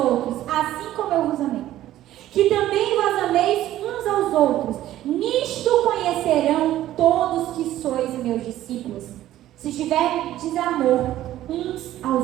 assim como eu vos amei. Que também vos ameis uns aos outros. Nisto conhecerão todos que sois meus discípulos, se tiverdes amor uns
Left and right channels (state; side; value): quieter; left; 13.6 dB